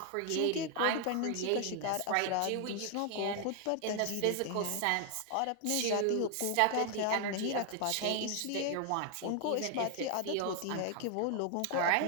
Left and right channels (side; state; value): both; different; correlation 0.00